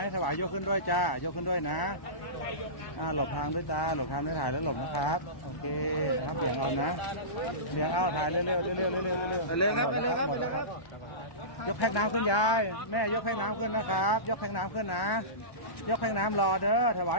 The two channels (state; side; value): late; right; 1.1 ms